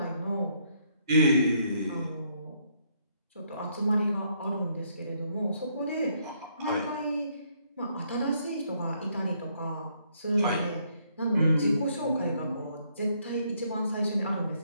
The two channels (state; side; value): inverted; both; correlation -0.71